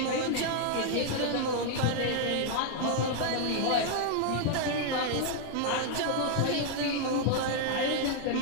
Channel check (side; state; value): both; different; correlation 0.00